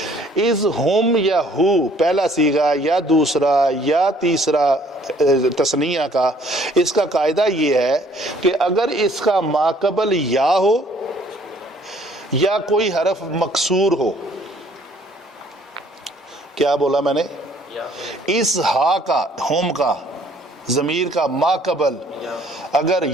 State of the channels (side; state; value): both; normal; correlation 0.59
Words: از ہم یا ہو پہلا صیغہ یا دوسرا یا تیسرا تثنیہ کا، اس کا قاعدہ یہ ہے کہ اگر اس کا ماقبل یا ہو یا کوئی حرف مکسور ہو، کیا بولا میں نے؟ اس ہا کا، ہوم کا ضمیر کا ماقبل اگر